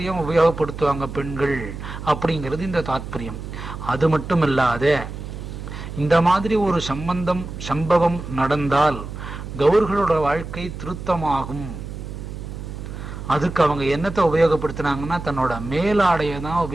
உபயோகப்படுத்துவாங்க பெண்கள் அப்படிங்கிறது இந்த தாத்பரியம். அது மட்டும் இல்லாத, இந்த மாதிரி ஒரு சம்பவம் நடந்தால் கௌர்களோட வாழ்க்கை திருத்தமாகும். அதுக்கு அவங்க என்னத்தை உபயோகப்படுத்தினாங்கன்னா, தன்னோட மேலாடையை தான்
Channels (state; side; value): noise; right; hum, 9 dB below the sound